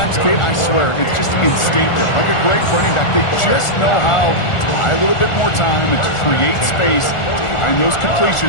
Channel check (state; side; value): late; right; 1.4 ms